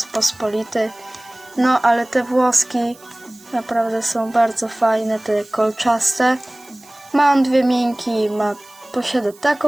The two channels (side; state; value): right; noise; hiss, 25 dB below the sound